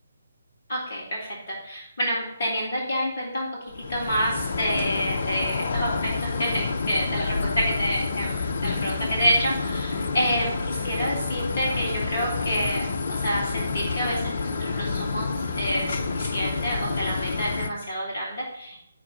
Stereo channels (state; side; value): inverted; both; correlation -0.80